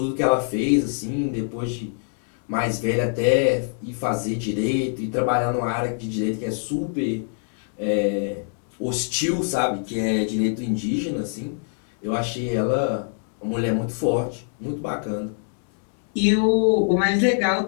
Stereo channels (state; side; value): silent; right; 62 dB below the other